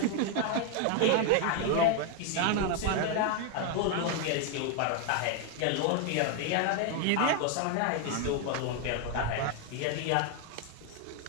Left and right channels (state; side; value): different; both; correlation 0.01